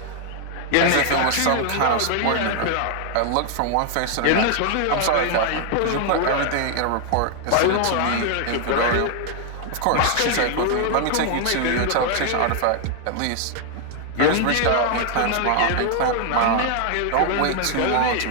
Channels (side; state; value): both; different; correlation 0.00